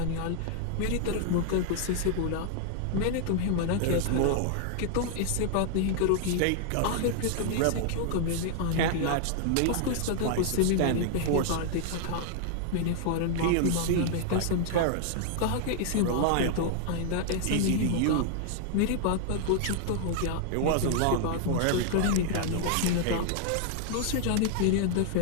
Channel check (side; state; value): both; different; correlation 0.00